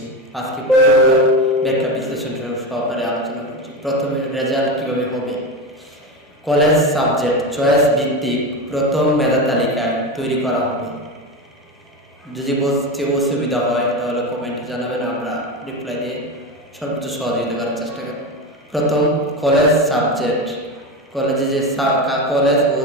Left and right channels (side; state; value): both; normal; correlation 0.20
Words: আজকে ব্যাখ্যা বিশ্লেষণ সহকারে আলোচনা করছি। প্রথমে রেজাল্ট কীভাবে হবে। কলেজ সাবজেক্ট চয়েস ভিত্তিক প্রথম মেধা তালিকা তৈরি করা হবে। যদি বুঝতে অসুবিধা হয় তাহলে কমেন্টে জানাবেন, আমরা রিপ্লাই দিয়ে সর্বোচ্চ সহযোগিতা করার চেষ্টা করি। প্রথম, কলেজ সাবজেক্ট কলেজে যে কলেজ ও